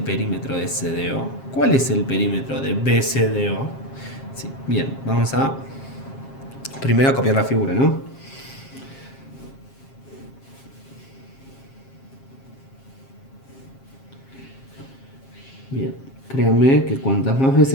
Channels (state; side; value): late; right; 7.5 ms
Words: de CDO? ¿Cuál es el perímetro de BCDO? Sí, bien, vamos a primero a copiar la figura, ¿no? Bien, créanme que cuantas más